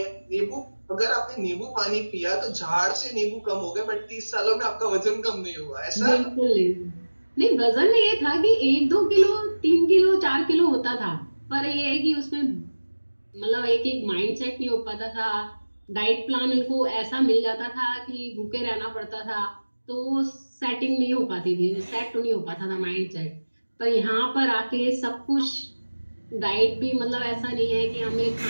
नींबू, अगर आपने नींबू पानी पिया तो झाड़ से नींबू कम हो गए, बट 30 सालों में आपका वजन कम नहीं हुआ, ऐसा? बिल्कुल नहीं। नहीं, वजन ये था कि 1-2 किलो, 3 किलो, 4 किलो होता था। पर ये है कि उसमें मतलब एक एक माइंड सेट नहीं हो पाता था। डाइट प्लान उनको ऐसा मिल जाता था कि भूखे रहना पड़ता था। तो सेटिंग नहीं हो पाती थी, सेट नहीं हो पाता था माइंड सेट। पर यहाँ पर आके सब कुछ, डाइट भी मतलब ऐसा नहीं है कि हमें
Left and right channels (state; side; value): inverted; both; correlation -1.00